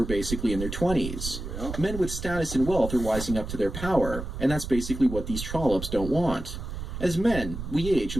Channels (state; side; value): noise; right; rumble, 7 dB below the sound